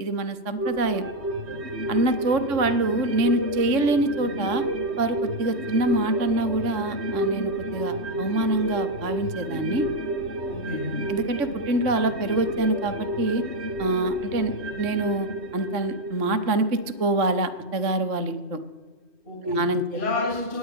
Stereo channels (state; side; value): late; left; 3.5 ms